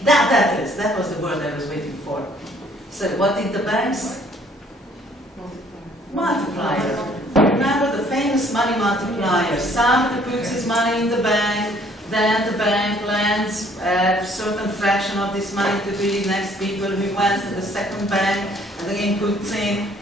That was the word I was waiting for. So what did the banks? Multiplier. Remember the famous money multiplier. Somebody puts his money in the bank, then the bank lends a certain fraction of this money to the next people who went to the second bank and again puts in,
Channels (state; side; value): normal; both; correlation 0.60